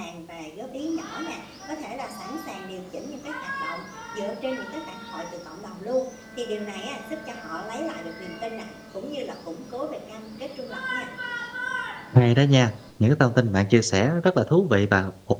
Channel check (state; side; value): identical; both; correlation 1.00